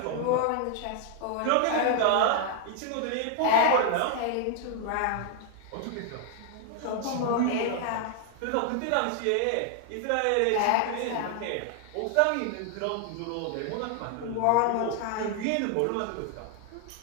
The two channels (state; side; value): different; both; correlation 0.00